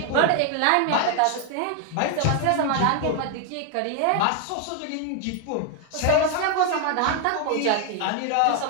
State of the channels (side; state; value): both; different; correlation 0.00